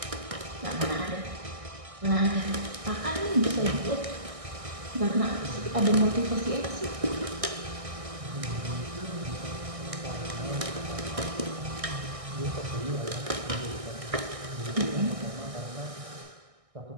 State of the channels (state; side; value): late; left; 1.6 ms